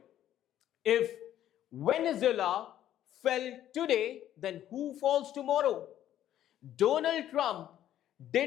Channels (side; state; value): right; quieter; 11.8 dB